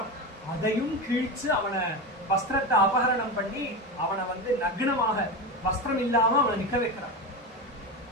அதையும் கிழிச்சு அவனை வஸ்திரத்தை அபகரணம் பண்ணி அவனை நக்னமாக வஸ்திரம் இல்லாம அவனை நிக்க வைக்கிறான்.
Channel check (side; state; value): both; normal; correlation 0.20